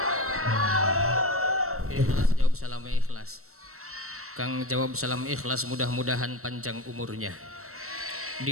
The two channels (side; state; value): left; late; 0.63 ms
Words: Ikhlas jawab salamnya ikhlas. Kang jawab salam ikhlas, mudah-mudahan panjang umurnya,